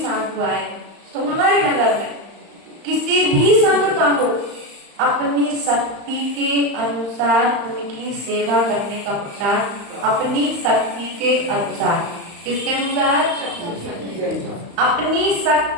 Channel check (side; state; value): left; late; 35 ms